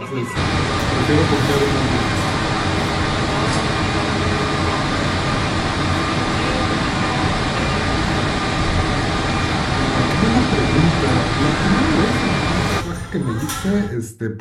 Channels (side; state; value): both; identical; correlation 1.00